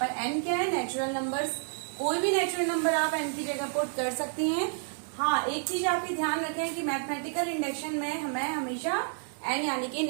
n क्या है, नेचुरल नंबर्स। कोई भी नेचुरल नंबर आप n की जगह पुट कर सकती हैं। हाँ, एक चीज आप ध्यान रखें कि मैथमेटिकल इंडक्शन में हमें हमेशा n यानी कि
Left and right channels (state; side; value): silent; left; 58 dB below the other